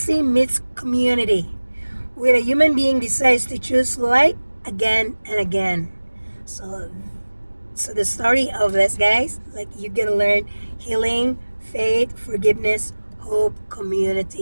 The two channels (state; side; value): inverted; both; correlation -1.00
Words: meets community, when a human being decides to choose light again and again. So the story of this, guys, like you're gonna learn healing, faith, forgiveness, hope,